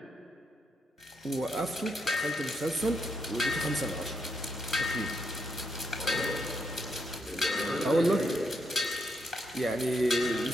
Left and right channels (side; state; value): both; normal; correlation 0.79